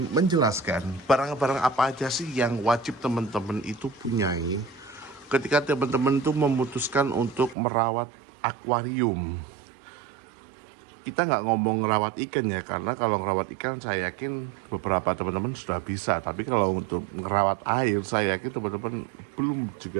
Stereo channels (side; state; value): left; drops out; at 7.6 s